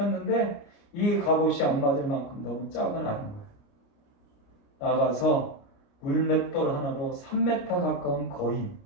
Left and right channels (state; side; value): late; right; 29 ms